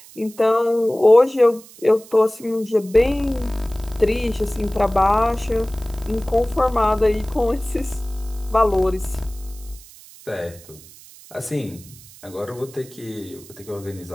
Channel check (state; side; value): noise; right; hiss, 21 dB below the sound